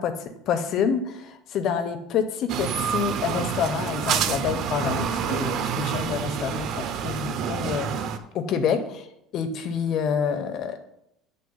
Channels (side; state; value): both; normal; correlation 0.43